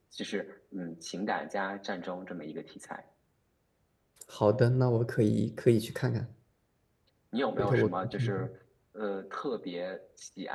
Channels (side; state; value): both; identical; correlation 1.00